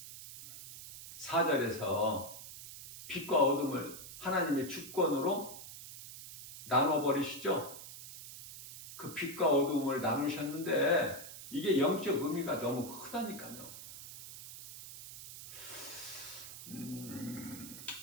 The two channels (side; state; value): right; noise; hiss, 13 dB below the sound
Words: 4절에서 빛과 어둠을 하나님의 주권으로 나눠버리시죠. 그 빛과 어둠을 나누셨는데 이게 영적 의미가 너무 크다니까요.